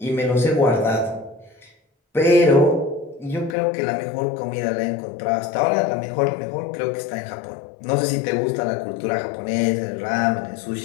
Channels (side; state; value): right; drops out; at 3.6 s